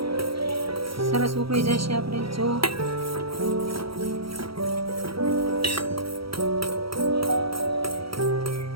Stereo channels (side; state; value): left; late; 0.75 ms